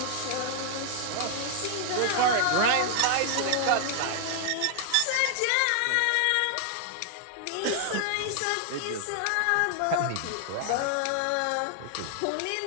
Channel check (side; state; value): both; different; correlation 0.00